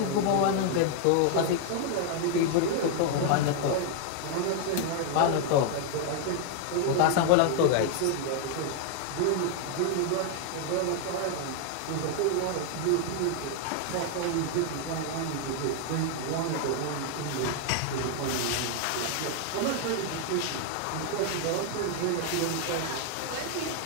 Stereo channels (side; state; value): both; different; correlation 0.00